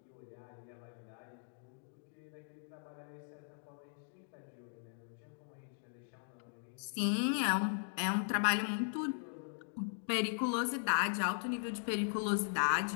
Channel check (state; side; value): silent; right; digital silence